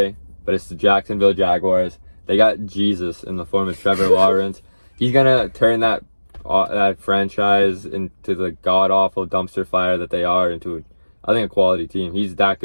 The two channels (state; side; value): inverted; both; correlation -1.00